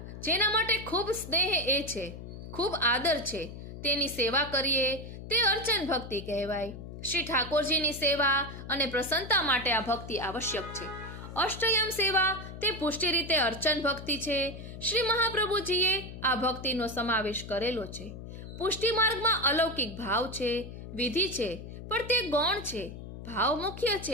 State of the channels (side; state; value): left; noise; hum, 11 dB below the sound